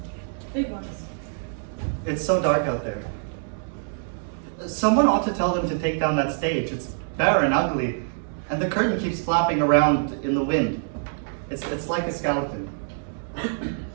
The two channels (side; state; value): left; silent; digital silence